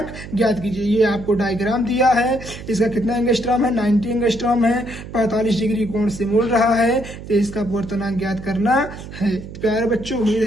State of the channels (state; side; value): noise; right; hum, 13 dB below the sound